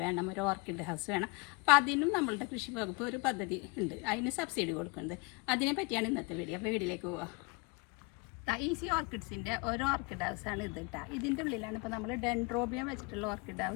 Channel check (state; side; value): quieter; right; 28.9 dB